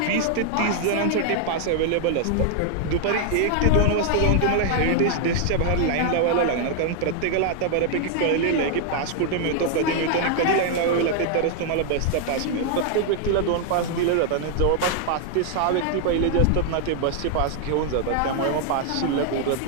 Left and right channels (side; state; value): both; different; correlation 0.00